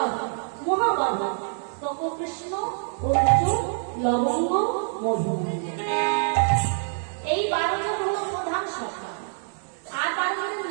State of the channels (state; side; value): silent; left; 61 dB below the other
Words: মহাবাধা তপকৃষ্ণ অর্জুন লবঙ্গ মধু। এই 12 জন হল প্রধান সখা। আর 12 জনের